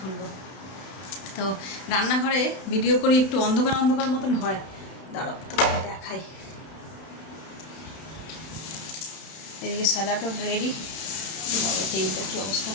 তো রান্নাঘরে ভিডিও করি, একটু অন্ধকার অন্ধকার মতন হয়, দাঁড়াও তো দেখাই। এদিকে স্যালাডও রেডি। তেলটা কী অবস্থা,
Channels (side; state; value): right; late; 32 ms